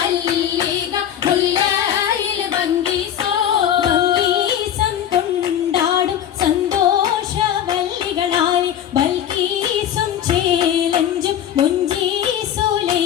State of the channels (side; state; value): right; quieter; 10.1 dB